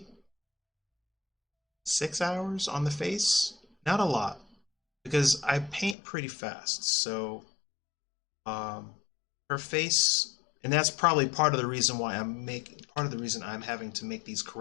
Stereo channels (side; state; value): right; drops out; at 6.0 s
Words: 6 hours on the face. Not a lot, because I paint pretty fast. So um, her face, and that's probably part of the reason why part of the reason I'm having to make these